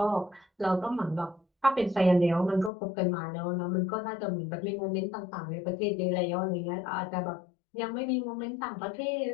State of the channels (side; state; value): right; drops out; at 2.7 s